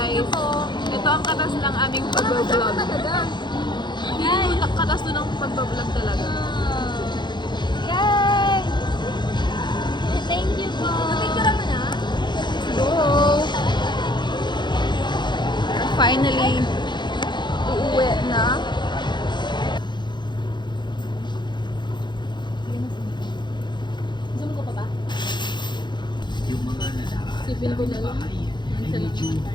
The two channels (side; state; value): right; late; 0.22 ms